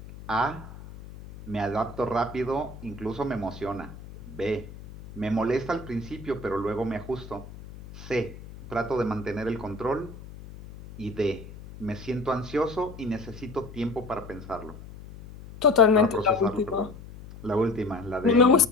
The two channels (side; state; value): left; noise; hum, 15 dB below the sound